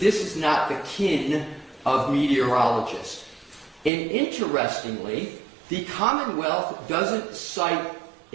this is not the kin of meteorologists. And interestingly, the Commonwealth doesn't cite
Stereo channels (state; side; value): drops out; left; at 3.9 s